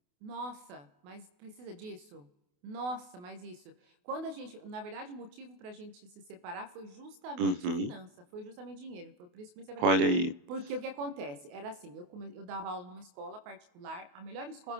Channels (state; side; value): late; left; 28 ms